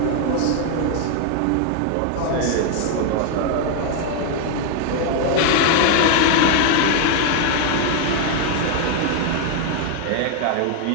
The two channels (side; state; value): both; different; correlation 0.00